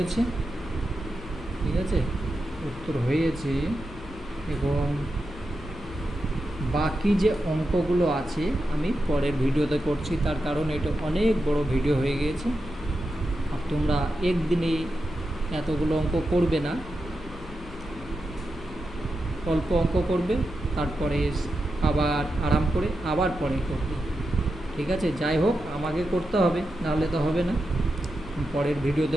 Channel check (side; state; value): left; noise; hum, 16 dB below the sound